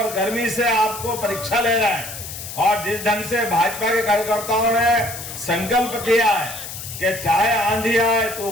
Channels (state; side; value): noise; left; hiss, 10 dB below the sound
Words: गर्मी से आपको परीक्षा ले रहा है। और जिस ढंग से भाजपा के कार्यकर्ताओं ने संकल्प किया है कि चाहे आंधी आए,